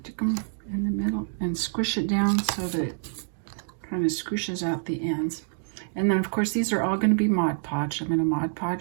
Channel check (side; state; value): left; silent; digital silence